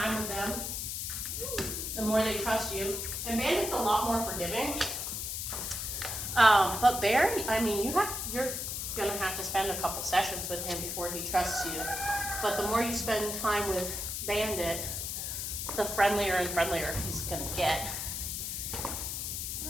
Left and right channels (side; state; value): left; noise; hiss, 3 dB below the sound